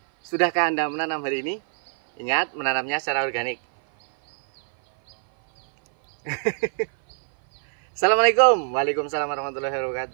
Sudahkah Anda menanam hari ini? Ingat, menanamnya secara organik. Assalamualaikum. Waalaikumsalam warahmatullahi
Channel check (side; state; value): left; silent; 58 dB below the other